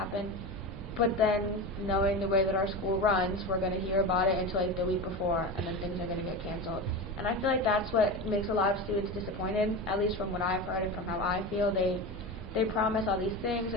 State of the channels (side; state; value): both; normal; correlation 0.24